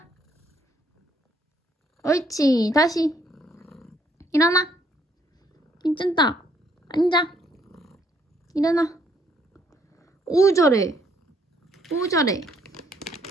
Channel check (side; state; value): both; normal; correlation 0.68